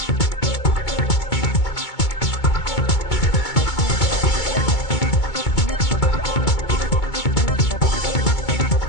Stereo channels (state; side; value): late; right; 2.2 ms